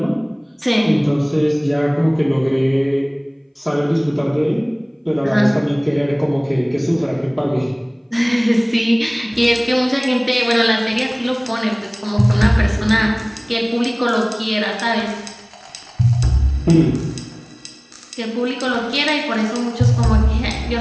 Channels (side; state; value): both; identical; correlation 1.00